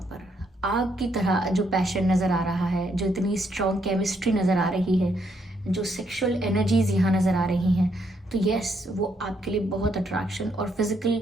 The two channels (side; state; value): both; normal; correlation 0.74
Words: पर, आग की तरह जो पैशन नज़र आ रहा है, जो इतनी स्ट्रॉन्ग केमिस्ट्री नज़र आ रही है, जो सेक्सुअल एनर्जीज यहाँ नज़र आ रही हैं, तो यस वो आपके लिए बहुत अट्रैक्शन और फिजिकल